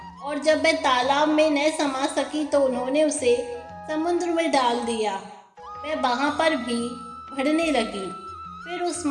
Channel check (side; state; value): both; identical; correlation 1.00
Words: और जब वह तालाब में न समा सकी तो उन्होंने उसे समुद्र में डाल दिया। वह वहाँ पर भी बढ़ने लगी। फिर उस